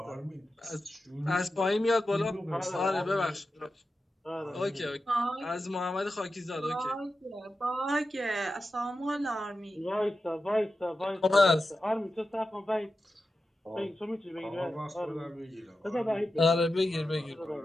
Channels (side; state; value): both; normal; correlation 0.91